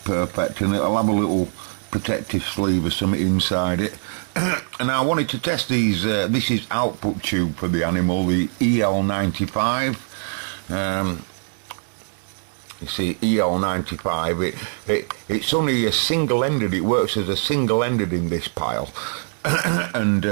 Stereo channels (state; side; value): silent; left; 64 dB below the other